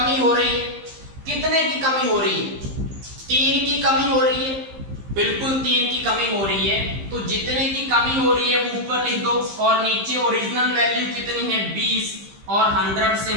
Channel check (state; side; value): late; left; 15 ms